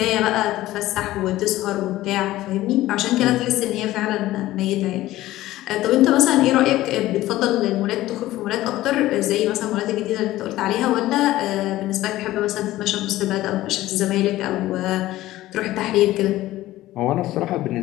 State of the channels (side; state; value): right; quieter; 15.9 dB